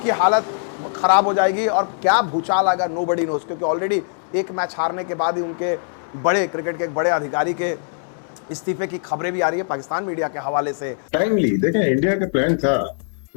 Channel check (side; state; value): right; silent; digital silence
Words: हालत ख़राब हो जाएगी और क्या भूचाल आएगा नोबडी नोस, क्योंकि ऑलरेडी एक मैच हारने के बाद ही उनके बड़े क्रिकेट के एक बड़े अधिकारी के इस्तीफे की खबरें भी आ रही है पाकिस्तान मीडिया के हवाले से। टाइमली देखें, इंडिया का प्लान था,